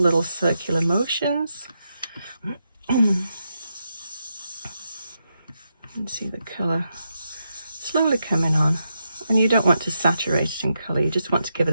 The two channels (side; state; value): both; inverted; correlation -0.84